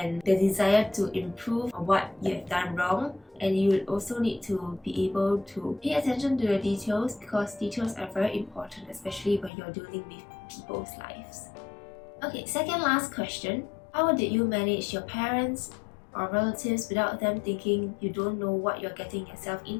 the desire to improve on what you have done wrong, and you will also need to be able to pay attention to the details, because details are very important, especially when you're dealing with people's lives. Okay, second last question. How did you manage your parents or relatives without them thinking you don't know what you're getting yourself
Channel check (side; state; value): right; drops out; at 9.5 s